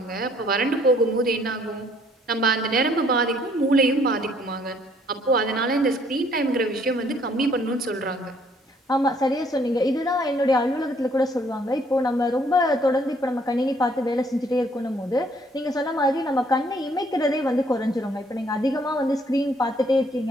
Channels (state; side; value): normal; both; correlation 0.64